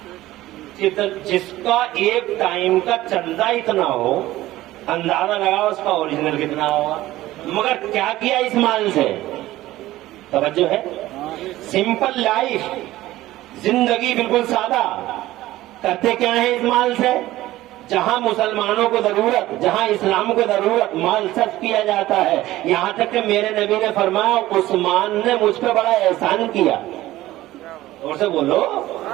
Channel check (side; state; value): left; quieter; 16.1 dB